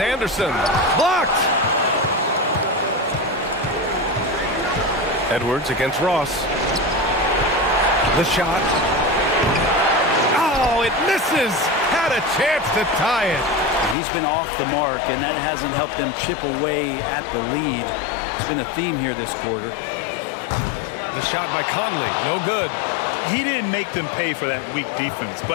Blocked. Edwards against Ross. The shot. Oh, it misses. Had a chance to tie it. He's been off the mark, and that hasn't helped them chip away at the lead. It's been a theme here this quarter. The shot by Conley. No good. He didn't make them pay for that weak defense,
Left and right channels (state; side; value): drops out; right; at 14.0 s